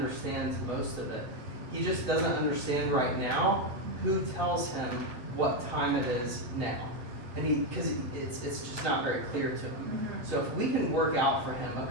most of it. He just doesn't understand right now who tells him what time it is now. And because it's just not very clear to him. So if we can work out for him,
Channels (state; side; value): late; left; 8.1 ms